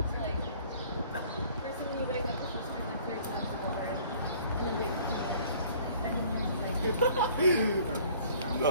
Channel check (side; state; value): both; inverted; correlation -0.54